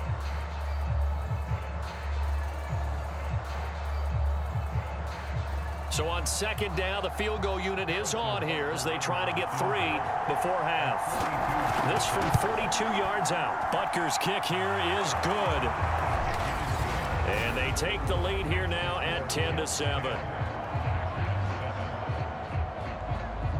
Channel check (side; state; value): both; identical; correlation 1.00